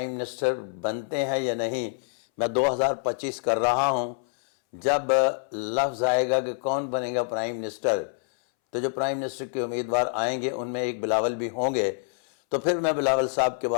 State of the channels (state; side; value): silent; right; 61 dB below the other